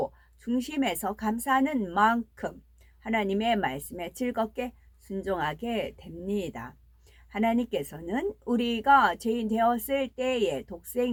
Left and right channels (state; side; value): identical; both; correlation 1.00